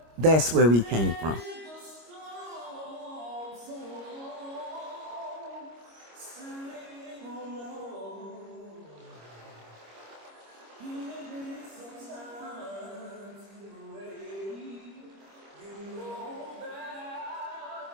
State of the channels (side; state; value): left; late; 25 ms